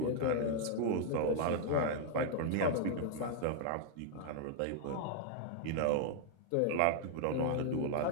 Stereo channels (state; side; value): different; both; correlation -0.01